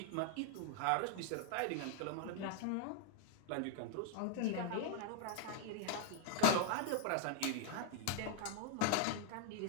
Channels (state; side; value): different; both; correlation 0.00